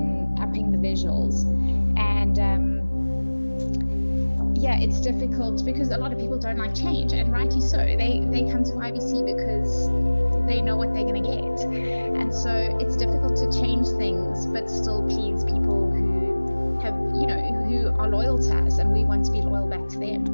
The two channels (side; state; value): both; inverted; correlation -1.00